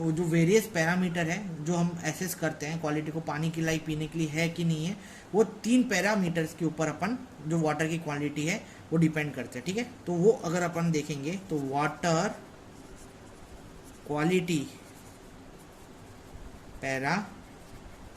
जो वेरियस पैरामीटर है जो हम एसेस करते हैं क्वालिटी को, पानी की लाइक पीने के लिए है कि नहीं है, वो 3 पैरामीटर्स के ऊपर अपन जो वाटर की क्वालिटी है वो डिपेंड करते हैं, ठीक है। तो वो अगर अपन देखेंगे तो water quality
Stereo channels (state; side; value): identical; both; correlation 1.00